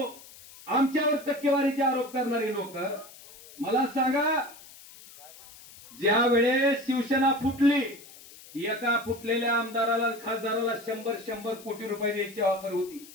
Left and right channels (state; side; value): noise; left; hiss, 20 dB below the sound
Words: आमच्यावर टक्केवारीचे आरोप करणारी लोक, मला सांगा, ज्या वेळेस शिवसेना फुटली, एका फुटलेल्या आमदाराला, खासदाराला 100 कोटी रुपये द्यायची ऑफर होती,